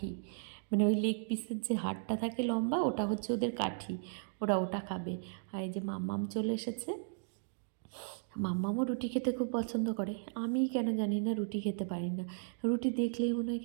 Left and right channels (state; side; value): silent; left; digital silence